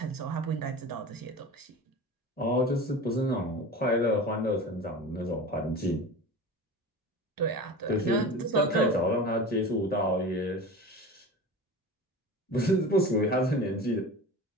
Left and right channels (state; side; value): normal; both; correlation 0.33